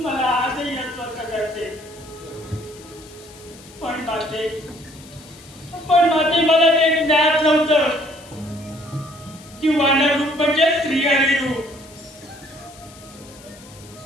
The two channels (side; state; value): left; noise; hiss, 21 dB below the sound